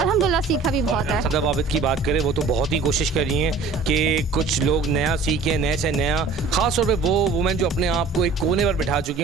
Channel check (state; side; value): quieter; left; 4.1 dB